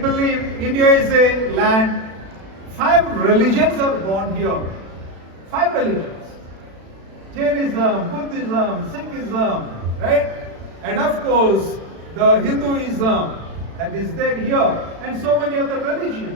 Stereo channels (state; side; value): late; left; 36 ms